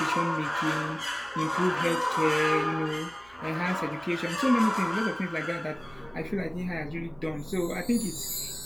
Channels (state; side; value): noise; right; hum, 26 dB below the sound